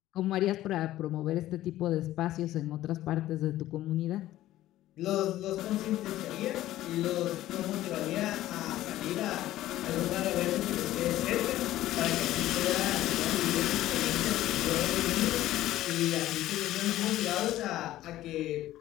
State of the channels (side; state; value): right; quieter; 14.6 dB